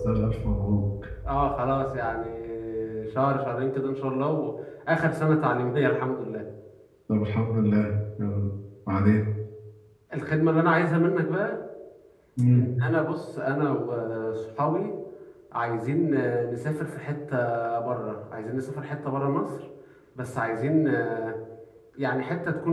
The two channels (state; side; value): identical; both; correlation 1.00